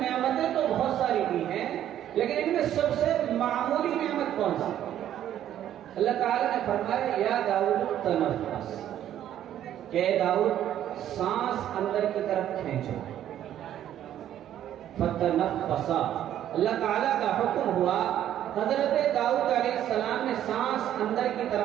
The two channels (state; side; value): quieter; left; 11.3 dB